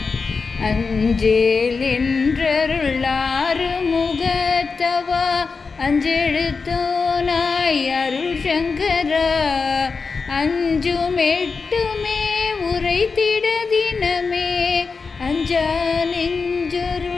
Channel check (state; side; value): quieter; right; 4.7 dB